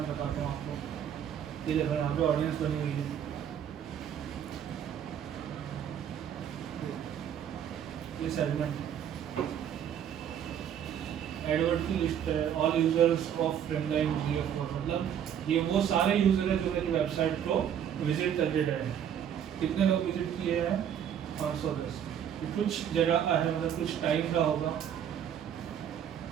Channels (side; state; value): left; quieter; 9.2 dB